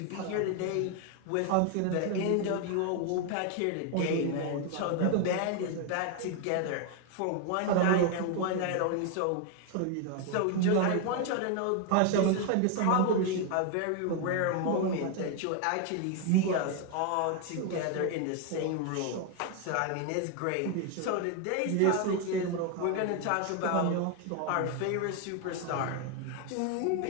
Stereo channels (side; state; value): both; different; correlation 0.01